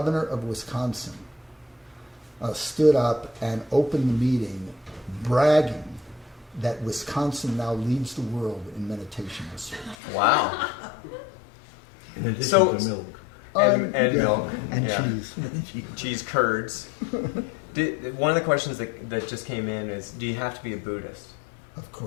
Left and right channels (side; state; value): right; drops out; at 10.0 s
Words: of Wisconsin stood up and opened the meeting bragging that Wisconsin now leads the world in meditation research. Wow. In addition So- to milk. And Yeah, milk. and Yeah. cheese. Cheese curds. One of the questions that just came in is, do you have to be a Buddhist? Of